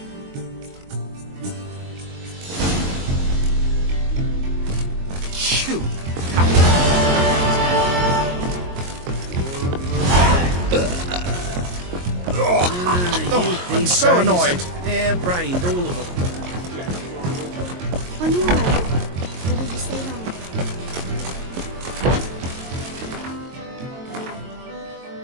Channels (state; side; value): late; left; 22 ms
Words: Shoot. I'm so annoyed. Hair-brained, all of them. On your way? Or will you stay long?